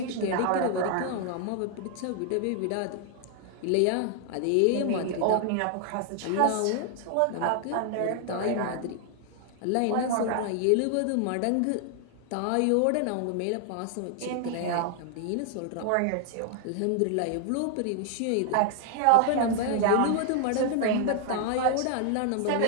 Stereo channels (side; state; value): both; different; correlation 0.00